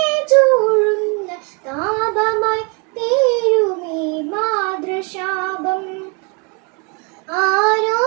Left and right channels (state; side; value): quieter; left; 33.3 dB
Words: ചൂഴുന്ന താപമായി തീരുമീ മാതൃശാപം. ആരോ